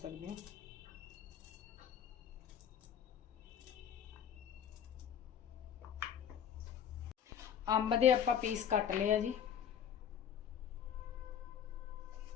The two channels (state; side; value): quieter; right; 8.7 dB